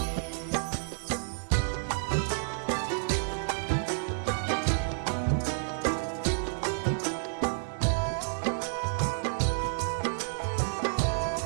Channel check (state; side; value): silent; left; 58 dB below the other